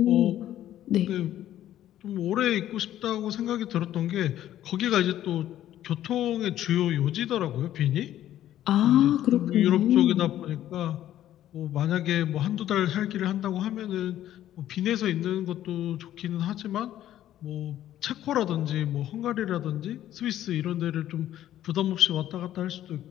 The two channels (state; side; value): quieter; right; 12.3 dB